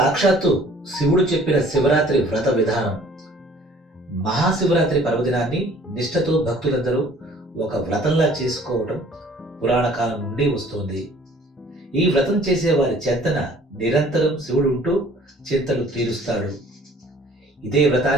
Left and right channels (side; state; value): both; normal; correlation 0.53